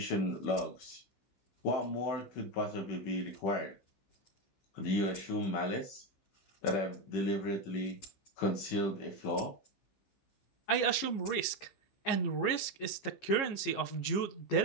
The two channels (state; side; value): late; right; 15 ms